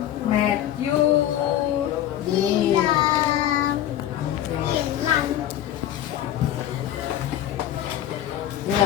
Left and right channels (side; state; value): right; quieter; 11.9 dB